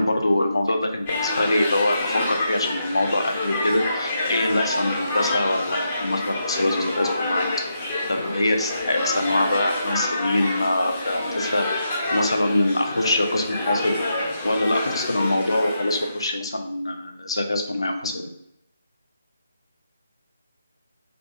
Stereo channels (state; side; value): inverted; both; correlation -0.83